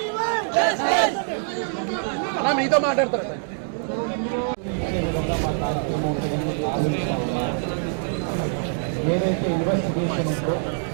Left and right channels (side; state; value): left; silent; digital silence